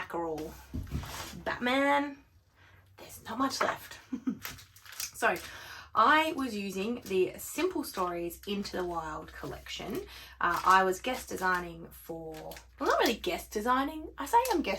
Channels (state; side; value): identical; both; correlation 1.00